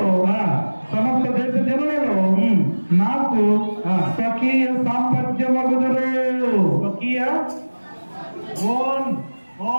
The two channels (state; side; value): inverted; both; correlation -1.00